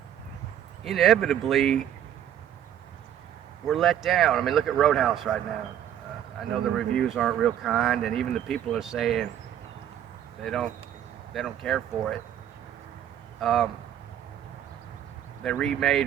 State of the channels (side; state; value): left; quieter; 10.4 dB